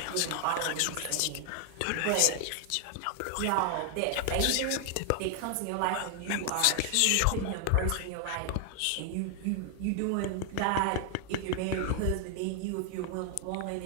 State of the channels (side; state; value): both; different; correlation 0.00